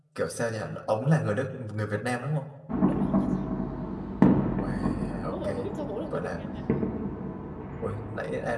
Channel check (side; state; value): both; identical; correlation 1.00